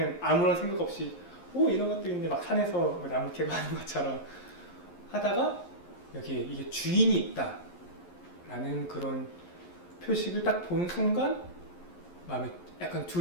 아무런 생각 없이 이런 것도 있는데 막 산에서 뭐 나무 캐고 하는 것처럼 하다가 여기에 이게 주인이 있다 라는 그런 표식을 딱 보는 순간 마음에 약간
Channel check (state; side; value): late; right; 11 ms